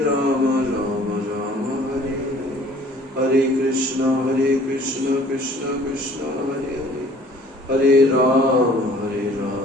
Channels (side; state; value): both; normal; correlation 0.53